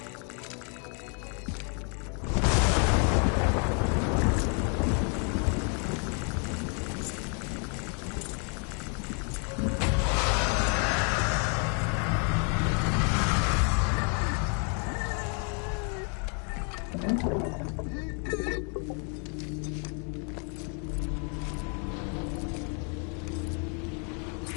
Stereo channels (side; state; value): right; quieter; 39.5 dB